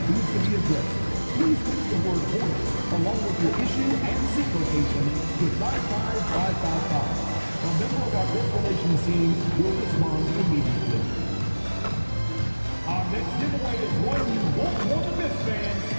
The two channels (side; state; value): both; inverted; correlation -1.00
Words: needs to be addressed, please text the word Hornets along with your issue and seat location to 55555. A member of our guest relations team will respond immediately. Our next giveaway is one you won't want to miss, fans.